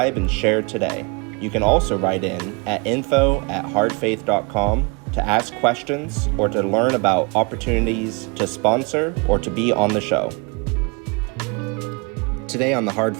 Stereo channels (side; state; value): left; quieter; 30.9 dB